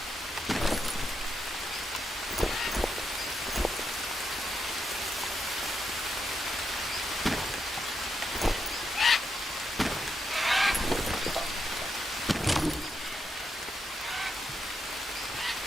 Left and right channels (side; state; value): both; normal; correlation 0.83